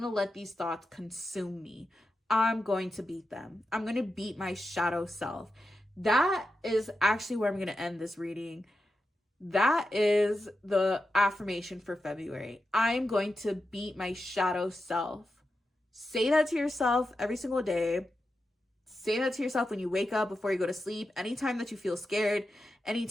let these thoughts consume me. I'm going to beat them. I'm gonna beat my shadow self. That is actually where I'm gonna end this reading. That is the affirmation for February. I'm going to beat my shadow self. Say that to yourself every single day. Say that to yourself when you wake up, before you go to sleep, anytime that you feel scared,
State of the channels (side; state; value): both; normal; correlation 0.89